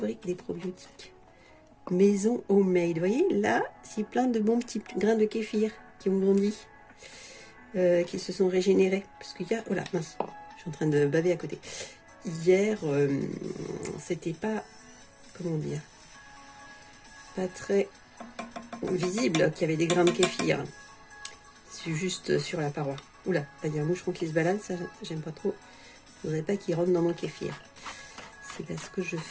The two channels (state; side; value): identical; both; correlation 1.00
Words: des probiotiques. Maison homemade. Vous voyez, là, c'est plein de bons petits grains de kéfir qui ont grandi, qui se sont régénérés. Parce qu'il y a... Oh là, mince, je suis en train de baver à côté. Hier, c'était pas... Comment dire? Pas très visible qu'il y avait des grains de kéfir. C'est juste sur la paroi. Oula, là, il y a un moucheron qui se balade, ça, j'aime pas trop. Je voudrais pas qu'il rentre dans mon kéfir. C'est parce que je